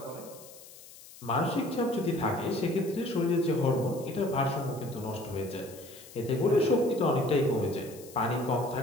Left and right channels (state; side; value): noise; left; hiss, 19 dB below the sound